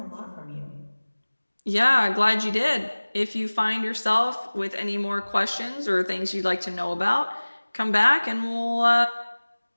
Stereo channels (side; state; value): both; inverted; correlation -1.00